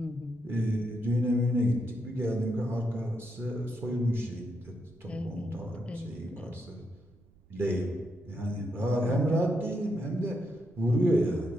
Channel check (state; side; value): noise; right; rumble, 28 dB below the sound